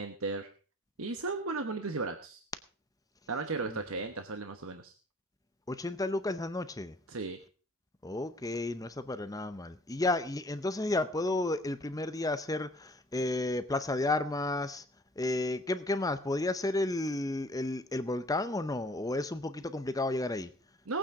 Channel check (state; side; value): normal; both; correlation 0.53